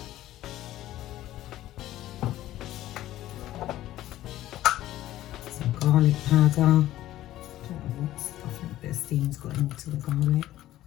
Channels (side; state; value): right; quieter; 14.3 dB